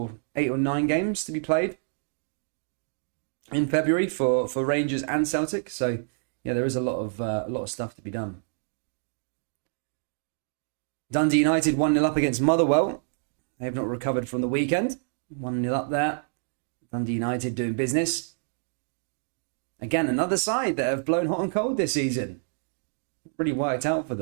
9 games to be played in February for Rangers and Celtic. So yeah, there is a lot of stuff to be done. Dundee United 1-0 up against Motherwell. They have not recovered from the weekend. 1-0 up there. Dundee United doing business. Again, another side that have blown hot and cold this season. Really worked out for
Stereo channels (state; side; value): silent; left; digital silence